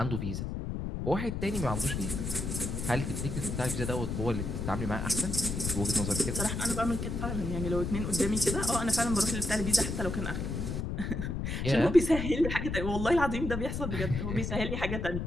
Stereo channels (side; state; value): left; noise; rumble, 3 dB below the sound